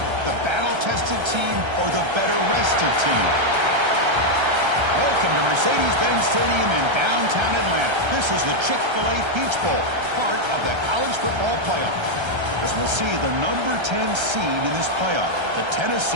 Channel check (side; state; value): left; late; 1.3 ms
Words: the battle-tested team or the better-rested team? Welcome to Mercedes-Benz Stadium in downtown Atlanta. This is the Chick-fil-A Peach Bowl, part of the college football playoff. As we'll see the number 10 seed in this playoff, the